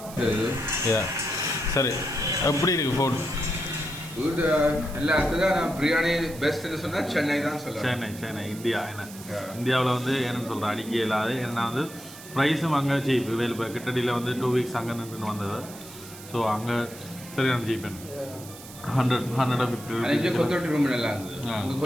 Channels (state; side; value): noise; right; hiss, 16 dB below the sound